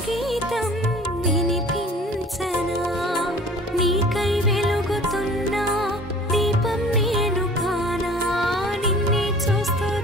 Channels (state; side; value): normal; both; correlation 0.46